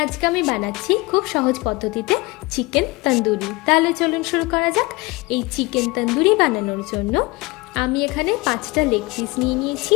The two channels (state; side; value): quieter; right; 23.8 dB